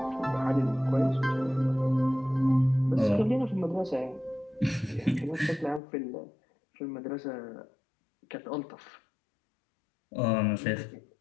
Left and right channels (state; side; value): drops out; right; at 5.8 s